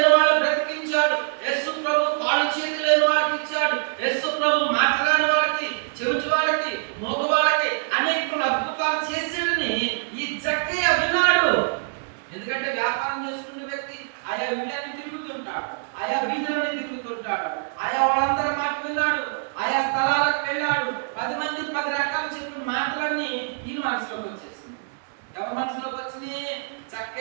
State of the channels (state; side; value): silent; left; digital silence